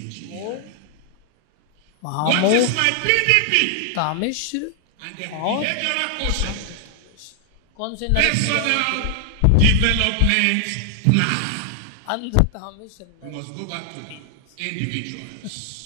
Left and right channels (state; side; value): different; both; correlation 0.00